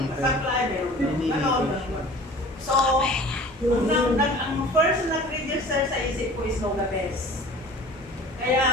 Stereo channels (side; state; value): both; normal; correlation 0.44